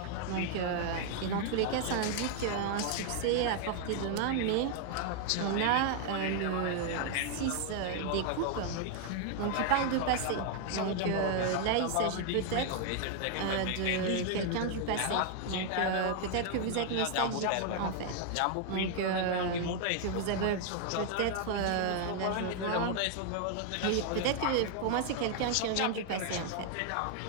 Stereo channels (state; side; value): different; both; correlation 0.00